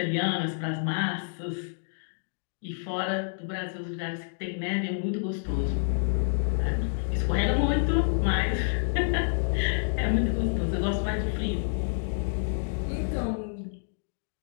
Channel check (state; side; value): silent; right; digital silence